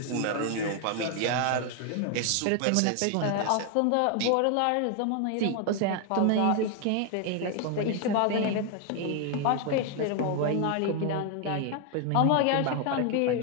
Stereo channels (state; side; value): different; both; correlation 0.01